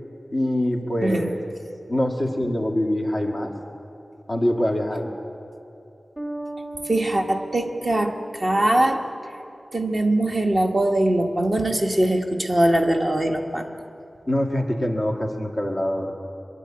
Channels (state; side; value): normal; both; correlation 0.96